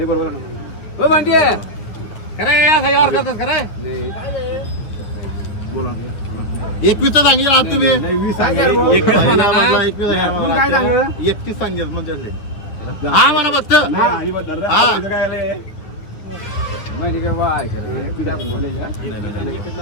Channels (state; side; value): late; right; 9.5 ms